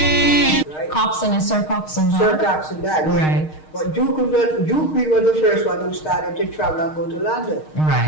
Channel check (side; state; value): right; late; 6.5 ms